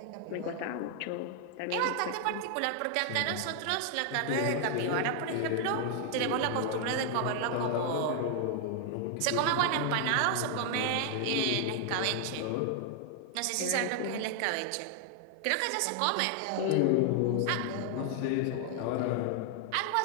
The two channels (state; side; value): different; both; correlation 0.00